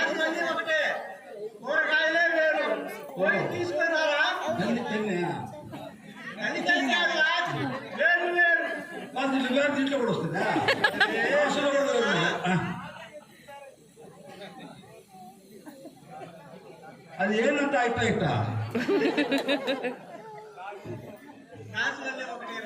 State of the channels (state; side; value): identical; both; correlation 1.00